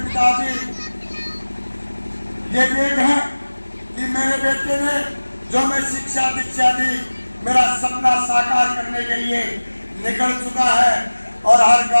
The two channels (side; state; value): both; inverted; correlation -1.00